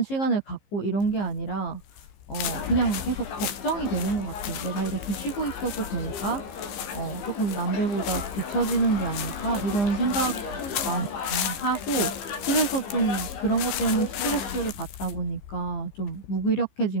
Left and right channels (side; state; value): right; late; 15 ms